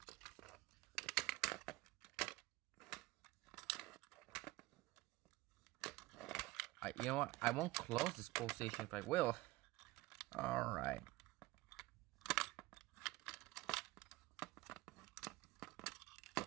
You know what? I won't close this pull station if I will. Alright.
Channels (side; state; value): left; quieter; 19.3 dB